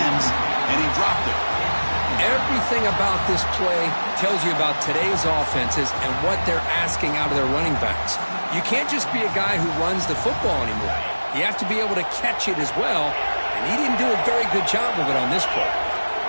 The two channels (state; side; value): inverted; both; correlation -1.00